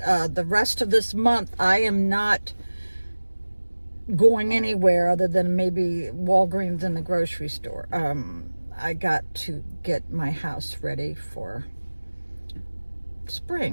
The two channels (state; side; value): inverted; both; correlation -1.00